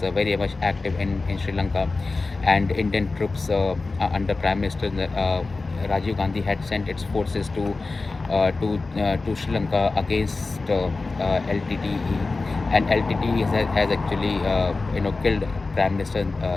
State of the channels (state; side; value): quieter; right; 3.7 dB